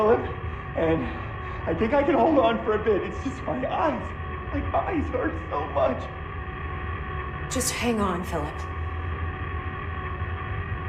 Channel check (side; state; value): both; identical; correlation 1.00